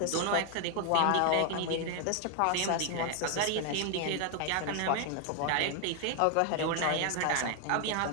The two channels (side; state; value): both; different; correlation 0.00